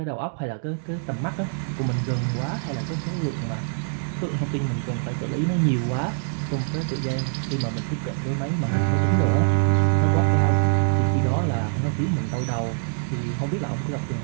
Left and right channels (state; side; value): silent; left; digital silence